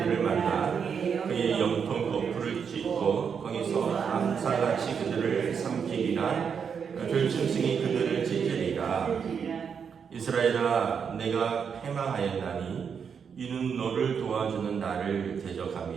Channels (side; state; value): left; quieter; 6.8 dB